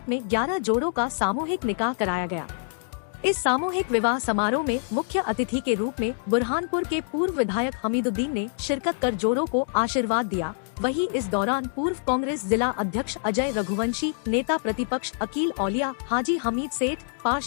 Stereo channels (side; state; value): right; silent; digital silence